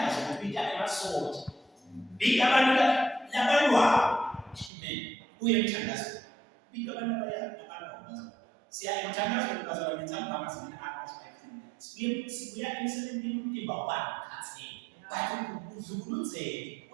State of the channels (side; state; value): left; drops out; at 4.7 s